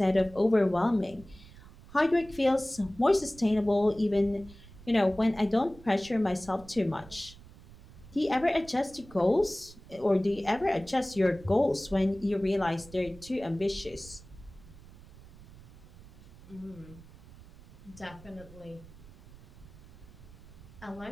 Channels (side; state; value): right; noise; rumble, 20 dB below the sound